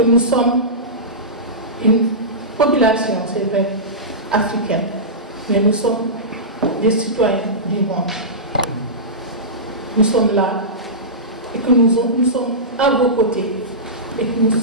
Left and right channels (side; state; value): both; normal; correlation -0.18